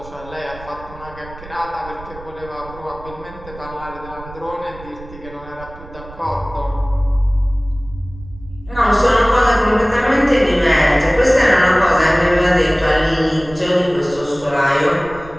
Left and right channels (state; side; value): noise; right; rumble, 17 dB below the sound